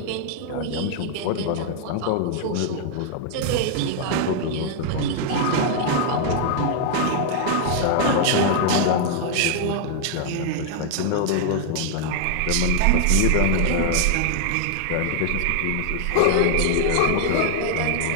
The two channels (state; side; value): different; both; correlation 0.00